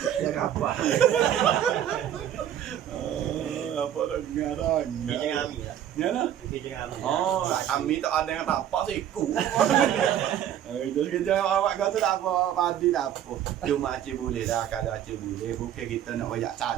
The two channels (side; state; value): left; quieter; 10.6 dB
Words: Ya apa? Apa tak dengar dah. Kerja kami lah. Ya nah. Kerja kami. Kami tak ada yang tapak siku. Itu kerja awak kau tu tak apa, padi tak apa. Cuma Acik boleh dah kalau Acik boleh. Bukan kita nak banyak